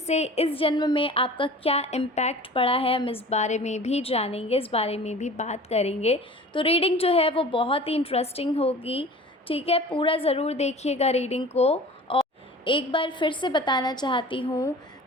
इस जन्म में आपका क्या इम्पैक्ट पड़ा है, हम इस बारे में भी जानेंगे, इस बारे में भी बात करेंगे। तो रीडिंग जो है वो बहुत ही इंटरेस्टिंग होगी। ठीक है, पूरा ज़रूर देखिएगा रीडिंग को। और एक बार फिर से बताना चाहती हूँ,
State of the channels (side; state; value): both; normal; correlation 0.41